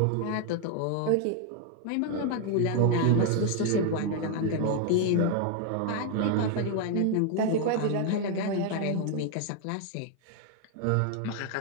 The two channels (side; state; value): both; different; correlation 0.01